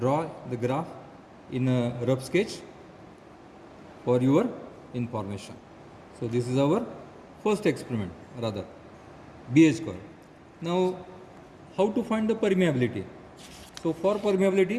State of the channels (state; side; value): identical; both; correlation 1.00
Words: the graph in a rough sketch for your information. So this is our first experiment, rather BH curve. Now how to find the permeability? So for